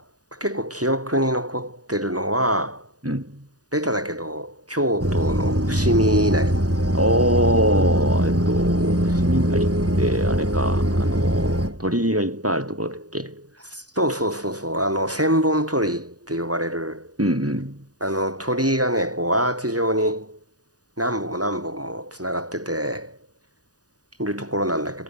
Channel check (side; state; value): left; late; 0.68 ms